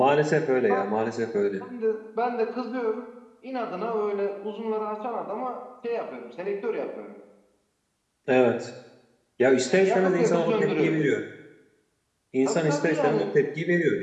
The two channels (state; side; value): identical; both; correlation 1.00